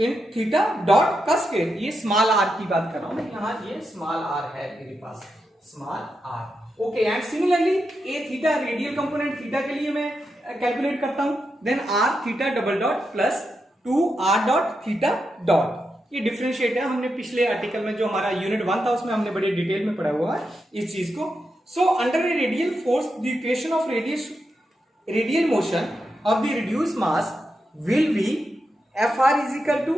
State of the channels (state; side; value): normal; both; correlation 0.86